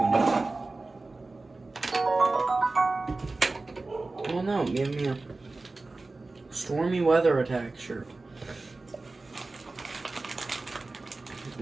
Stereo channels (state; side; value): quieter; left; 3.4 dB